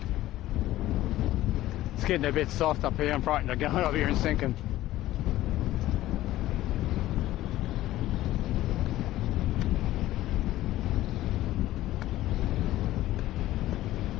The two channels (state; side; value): quieter; right; 15.2 dB